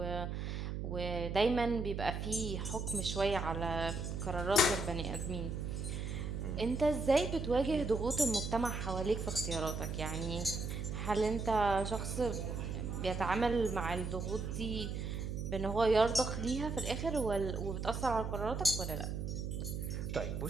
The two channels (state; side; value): noise; right; hum, 3 dB below the sound